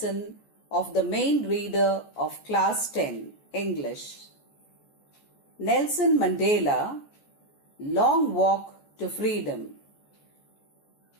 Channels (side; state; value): right; late; 14 ms